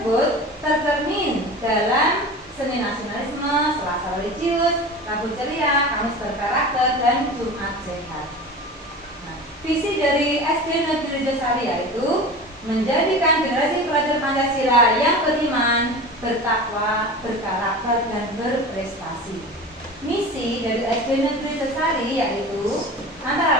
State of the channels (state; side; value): normal; both; correlation 0.34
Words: tercermin dalam seni nasionalisme, selasa religius, rabu ceria, kamus berkarakter, dan Jumat sehat. dari SD Negeri Rejosari yaitu menjadikan generasi pelajar Pancasila yang beriman, bertakwa, berkarakter, dan berprestasi. Misi dari SD Negeri Rejosari yaitu antara